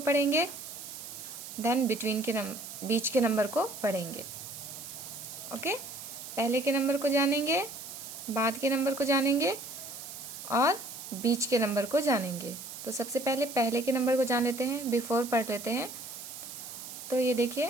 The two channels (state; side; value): noise; right; hiss, 11 dB below the sound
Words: पढ़ेंगे, देन बिटवीन के बीच के नंबर को पढ़ेंगे। ओके, पहले के नंबर को जानेंगे, बाद के नंबर को जानेंगे और बीच के नंबर को जानेंगे। तो सबसे पहले के नंबर को जान लेते हैं, बिफोर पढ़ लेते हैं। तो ये